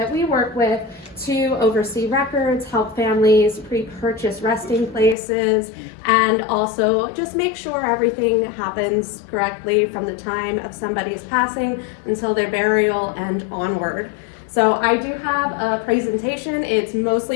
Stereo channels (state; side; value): drops out; right; at 5.2 s